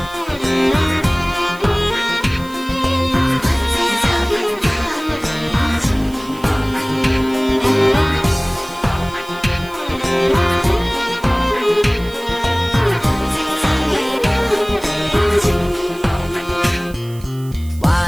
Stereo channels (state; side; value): noise; right; hiss, 22 dB below the sound